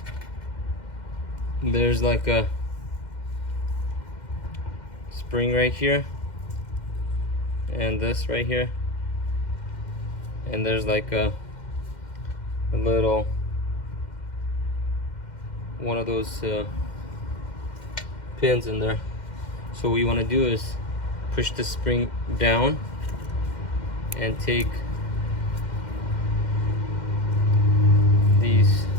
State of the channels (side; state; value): right; late; 2.1 ms